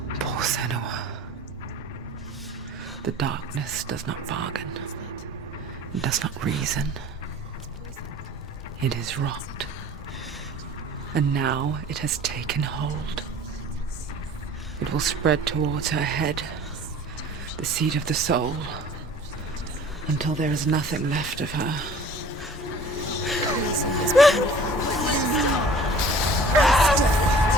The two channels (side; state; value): both; normal; correlation 0.46